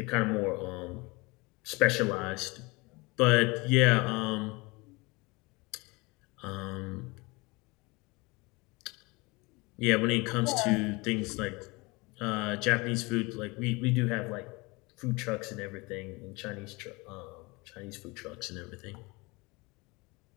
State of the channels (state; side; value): quieter; right; 25.3 dB